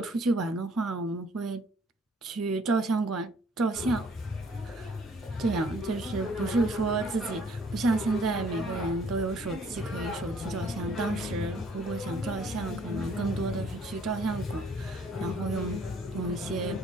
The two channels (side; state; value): both; normal; correlation 0.60